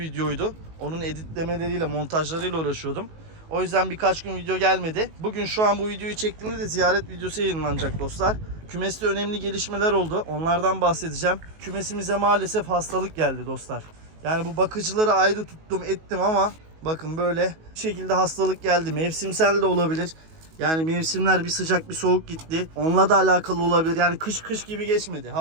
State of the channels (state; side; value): late; left; 19 ms